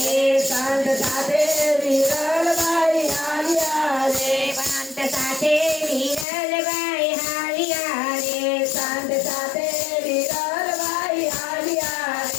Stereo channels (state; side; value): drops out; right; at 6.2 s